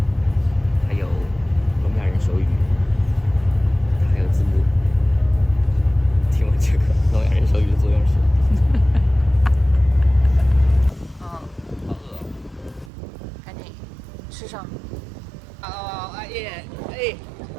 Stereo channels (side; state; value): left; drops out; at 12.9 s